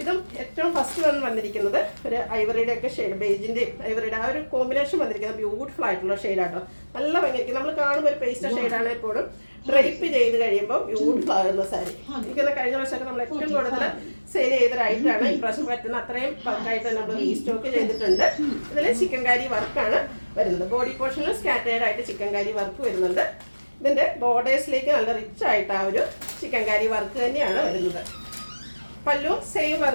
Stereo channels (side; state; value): both; inverted; correlation -1.00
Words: ഇതും ഏറ്റവും ഫസ്റ്റ് വന്നിരിക്കുന്നത് ഒരു ഐവറിയുടെ ഒക്കെ ഷെയ്ഡ്, ബേജിൻ്റെയും ഐവറിയുടെ ആ ഒരു കോമ്പിനേഷൻ വന്നിരിക്കുന്നത് ബ്യൂട്ടിഫുൾ ആയിട്ടുള്ള ഷെയ്ഡാട്ടോ. നല്ല ഭംഗിയായിരിക്കും. നമ്മൾ കാണുമ്പോൾ ഒരു പേസ്റ്റർ ഷെയ്ഡാണ്. എപ്പോഴും ഡ്രൈപ്പ് ചെയ്ത് കഴിയുമ്പോൾ ബ്യൂട്ടിഫുൾ ആകുന്ന സാരി. എനിക്കൊന്ന് കഴിഞ്ഞ വർഷമൊക്കെ നമ്മൾ ഏറ്റവും കൂടുതൽ സെയിൽ ചെയ്തൊരായിട്ടാണ്. ഈ പ്രാവശ്യം പറ്റുന്ന അത്രയും ബൾക്കായിട്ട് നമ്മൾ റീസ്റ്റോക്ക് ചെയ്തിട്ടുണ്ട്. ഇതിൽ ചിക്കൻകാരി വർക്കാണ് വരുന്നത്. ബോഡി പോർഷനിൽ സ്കാറ്റേഡ് ആയിട്ട് ചിക്കൻകാരി വർക്ക് വരുന്നുണ്ട്. ഇതിൻ്റെ ബോർഡേഴ്സിലേക്ക് നല്ല റിച്ച് ആയിട്ട് ആ ഒരു ചിക്കൻകാരി വർക്ക് തന്നെയാണ് വരുന്നത്. പല്ലു സെയിം